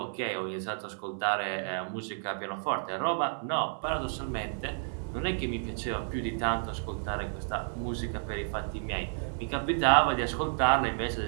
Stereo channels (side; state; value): left; silent; 57 dB below the other